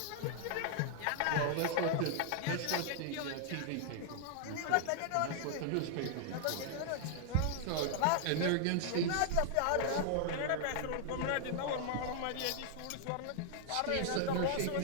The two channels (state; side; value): different; both; correlation -0.01